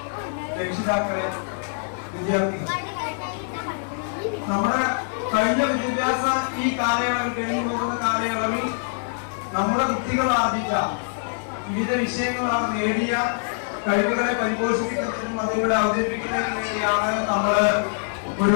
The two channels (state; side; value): silent; right; digital silence